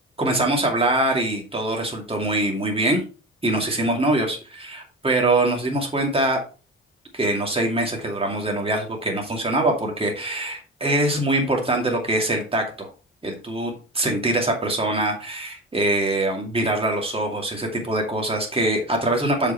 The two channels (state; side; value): normal; both; correlation 0.25